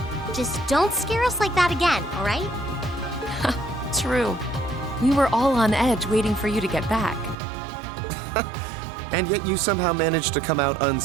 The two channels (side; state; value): left; drops out; at 7.4 s